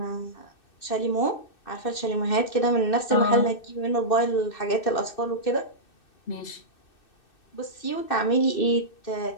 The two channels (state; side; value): late; right; 2.6 ms